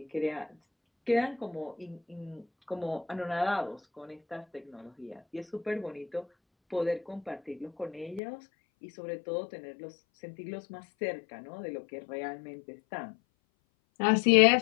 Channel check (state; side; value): drops out; right; at 8.2 s